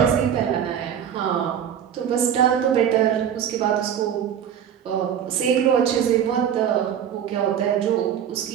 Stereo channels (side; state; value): left; quieter; 9.0 dB